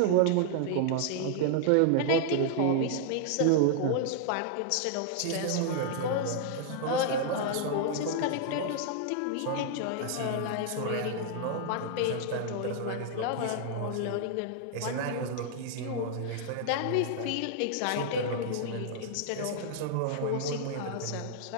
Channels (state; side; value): different; both; correlation -0.01